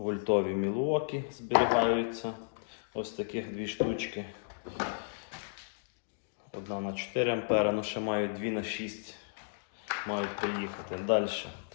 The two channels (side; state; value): right; silent; digital silence